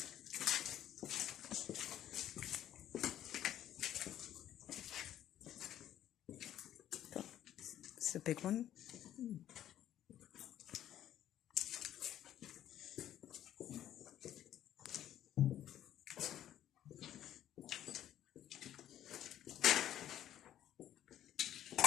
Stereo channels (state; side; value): quieter; right; 11.7 dB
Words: It's a big one.